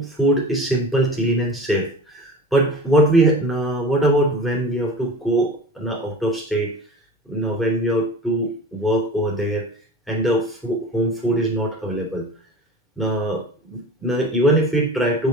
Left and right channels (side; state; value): both; normal; correlation 0.37